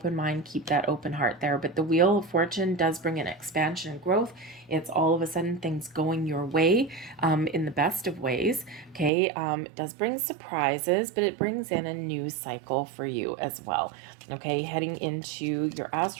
mind, keep that open heart there. But the Wheel of Fortune does bring an expansion and growth. It's all of a sudden things going your way, in the best of ways. Okay, it does bring surprises, but it brings in a new cycle for you as well. Okay, heading into your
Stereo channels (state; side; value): drops out; left; at 9.1 s